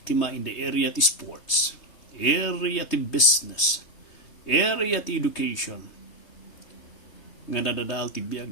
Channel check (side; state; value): right; late; 3.2 ms